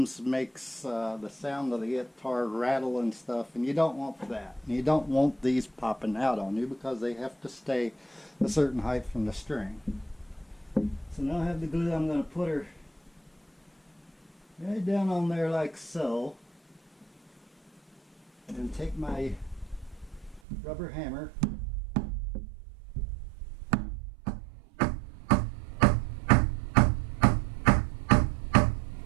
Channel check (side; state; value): left; drops out; at 20.4 s